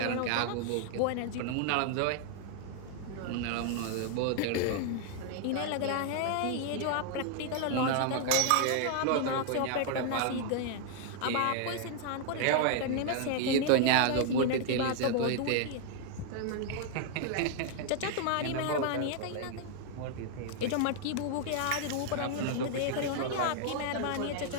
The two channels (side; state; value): both; different; correlation 0.00